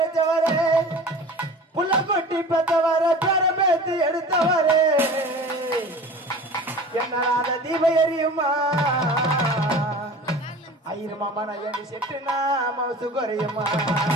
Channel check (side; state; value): both; normal; correlation 0.39